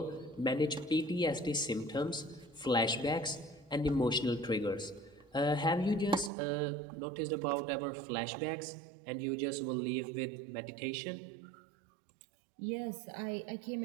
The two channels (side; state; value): left; drops out; at 6.3 s